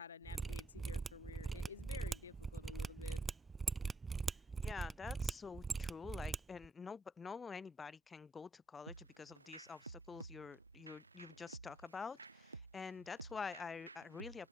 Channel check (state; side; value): normal; both; correlation 0.78